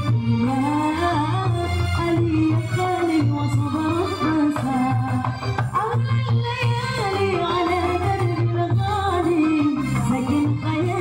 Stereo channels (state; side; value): identical; both; correlation 1.00